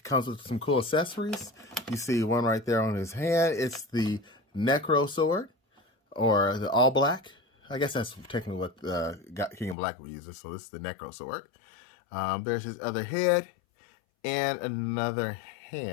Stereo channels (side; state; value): right; drops out; at 9.8 s